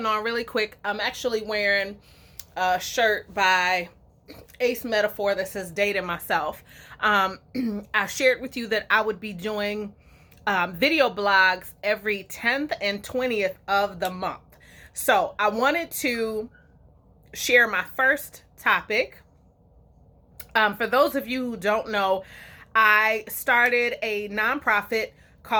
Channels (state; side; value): identical; both; correlation 1.00